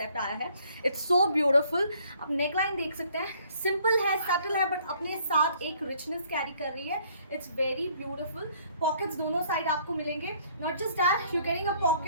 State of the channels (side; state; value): both; inverted; correlation -0.62